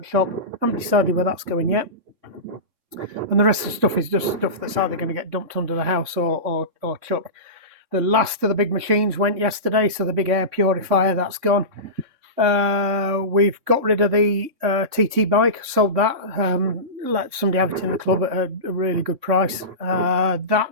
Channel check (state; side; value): late; left; 3.6 ms